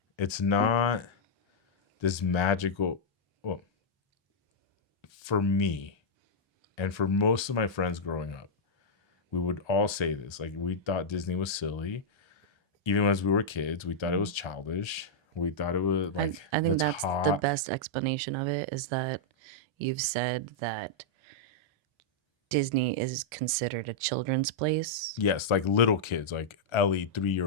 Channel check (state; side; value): normal; both; correlation -0.06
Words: It's not this magical, well, for me and for most of my friends growing up, we would all say this. Like we thought Disney was silly. Even as we were kids, we thought it was childish. We thought it was like I think it's that's the hot. best explanation of it is that you've said that Disney is considered a children's place. Yes, like little kids, like Ellie,